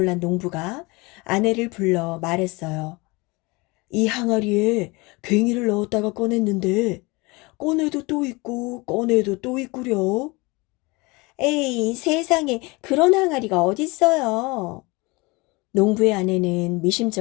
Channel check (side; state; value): right; quieter; 25.1 dB